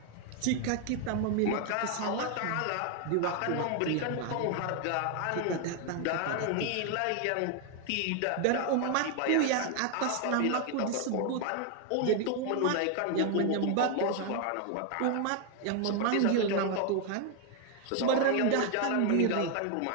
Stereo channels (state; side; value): different; both; correlation 0.00